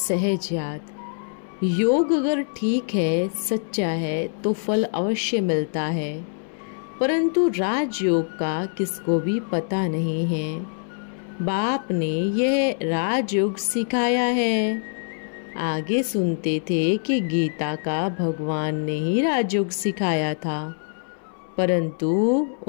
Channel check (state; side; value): silent; right; 62 dB below the other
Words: याद। योग अगर ठीक है, सच्चा है, तो फल अवश्य मिलता है, परंतु राजयोग का किसको भी पता नहीं है। बाप ने यह राजयोग सिखाया है। आगे सुनते थे कि गीता का भगवान ने ही राजयोग सिखाया था, परंतु